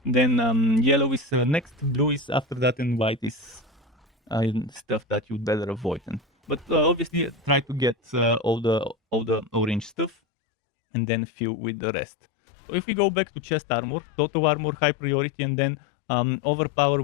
then yellow is next, blue is after that, and white is stuff that you'd better avoid. But obviously try to get all the orange stuff and then fill with the rest. So if we go back to chest armor, total armor, high priority, and then overpower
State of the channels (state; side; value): drops out; right; at 10.2 s